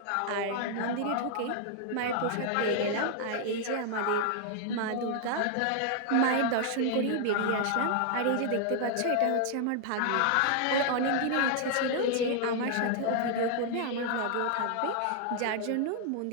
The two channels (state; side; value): different; both; correlation 0.00